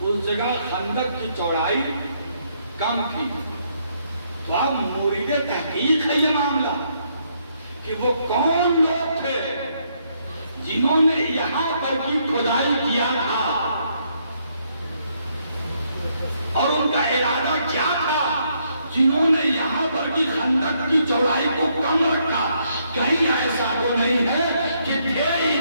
اس جگہ خندق کی چوڑائی کم تھی. تو اب مورد تحقیق ہے یہ معاملہ کہ وہ کون لوگ تھے جنہوں نے یہاں پر کی کھدائی کیا تھا اور ان کا ارادہ کیا تھا جنہوں نے یہاں پر کی خندق کی چوڑائی کو کم رکھا. کہیں ایسا تو نہیں ہے کہ تھے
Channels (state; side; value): inverted; both; correlation -0.73